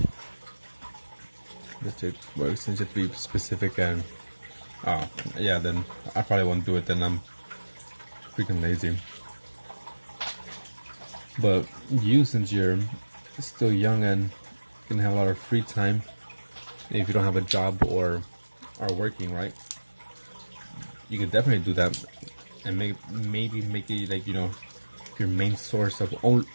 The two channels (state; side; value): inverted; both; correlation -1.00